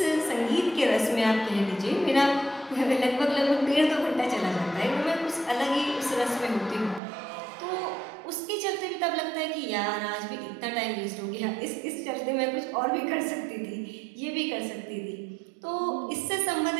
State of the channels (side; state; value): left; drops out; at 7.0 s